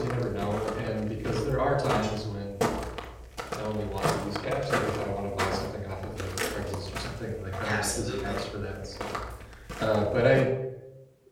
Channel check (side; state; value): both; identical; correlation 1.00